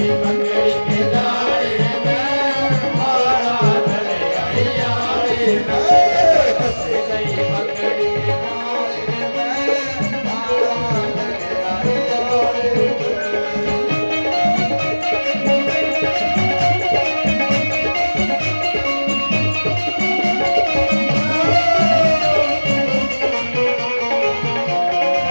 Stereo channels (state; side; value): inverted; both; correlation -1.00